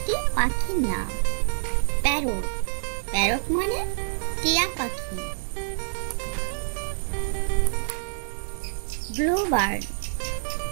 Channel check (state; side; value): silent; left; digital silence